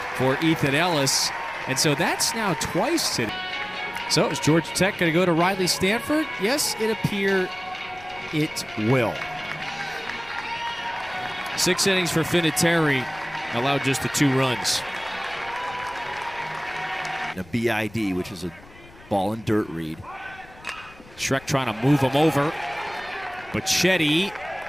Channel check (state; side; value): noise; left; rumble, 22 dB below the sound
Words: for Ethan Ellis. And so that's now twice today. So is Georgia Tech going to go to Riley Stanford? Yes, it appears it will. 6 innings for Vinatieri, allowed just the 2 runs. A BID, which is a ball and dirt read. Schreck trying to move him over. But Chetty